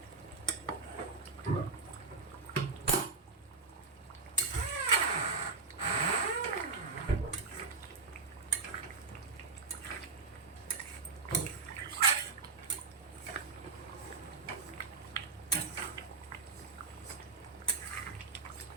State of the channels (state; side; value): quieter; left; 4.4 dB